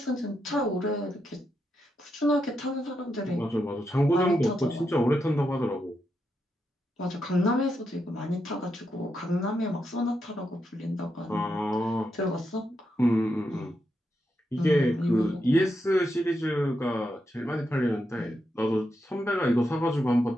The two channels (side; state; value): both; normal; correlation 0.84